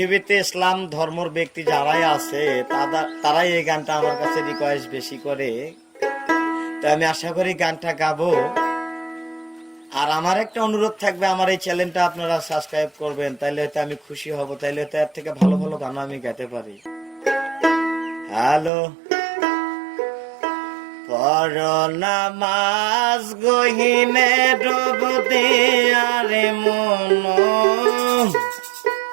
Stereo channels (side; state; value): left; drops out; at 18.7 s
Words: ইসলাম ধর্মের ব্যক্তি যারাই আছে তারাই এই গানটা আমার কাছে রিকোয়েস্ট বেশি করে, তো আমি আশা করি গানটা গাবো। আর আমার একটা অনুরোধ থাকবে, আমার এই চ্যানেলটা আপনারা সাবস্ক্রাইব করবেন, তাইলে হয়তো আমি খুশি হব, তাইলে হয়তো এর থেকে ভালো ভালো গান আমি গাইতে পারি। হ্যালো, পর নামাজ গহিনে ডুব দেয়ারে মন,